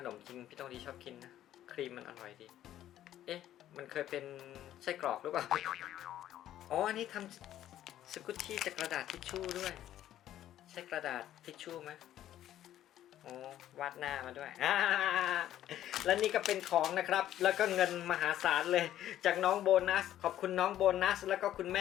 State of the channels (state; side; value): quieter; right; 12.2 dB